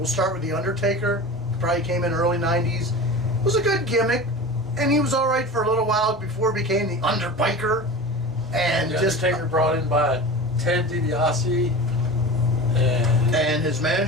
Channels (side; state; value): both; normal; correlation 0.32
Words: start with The Undertaker. Probably came in early 90s. It was a good gimmick, and he was all right for a little while before he became the Underbiker. And The just Undertaker brought in by Ted DiBiase, and his